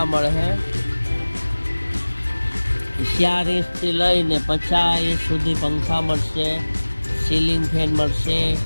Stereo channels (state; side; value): inverted; both; correlation -1.00